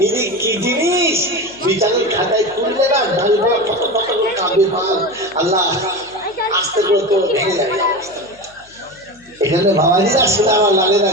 এই কি জিনিস বিচারের খাতায় তুললে না দাঁড়িয়ে কত কত করে কাঁদবে মাল আল্লাহ আস্তে করে তো ভেঙে যাবে এখানে বাবাজি আসলে আমার লাগে না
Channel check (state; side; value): noise; left; hum, 29 dB below the sound